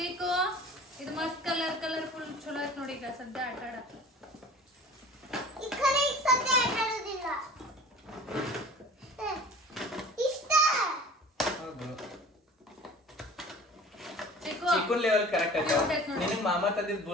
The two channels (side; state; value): both; normal; correlation 0.44